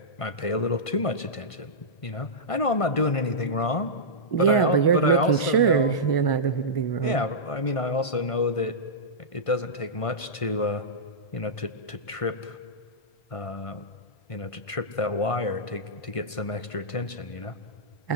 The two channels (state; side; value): late; right; 1.5 ms